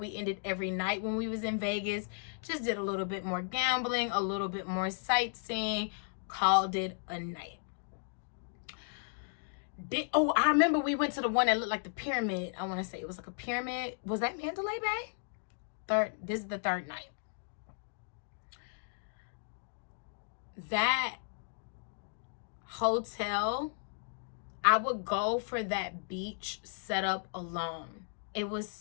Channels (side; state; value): right; silent; digital silence